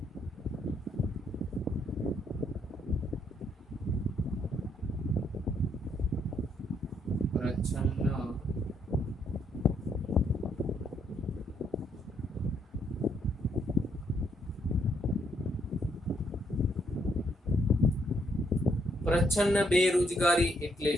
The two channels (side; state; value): both; normal; correlation 0.73